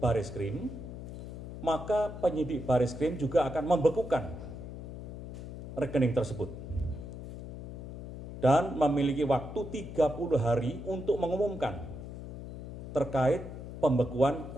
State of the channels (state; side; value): noise; left; hum, 10 dB below the sound